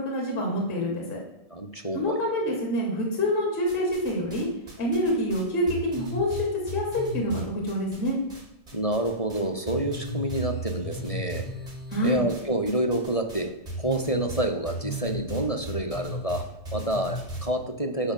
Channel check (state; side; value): late; right; 1.7 ms